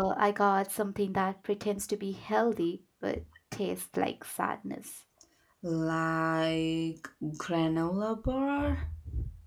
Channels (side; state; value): both; identical; correlation 1.00